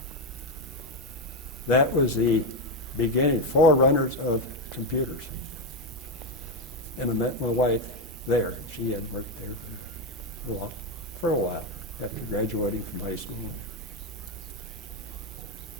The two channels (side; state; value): both; normal; correlation 0.08